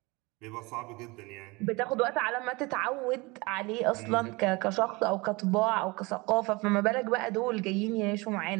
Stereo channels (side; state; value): left; quieter; 24.8 dB